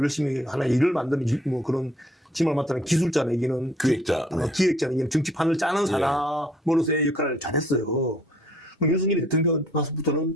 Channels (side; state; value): both; normal; correlation 0.60